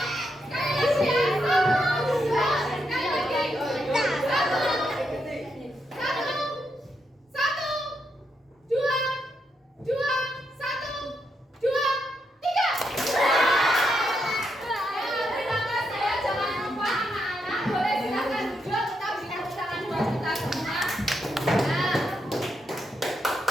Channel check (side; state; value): both; normal; correlation 0.81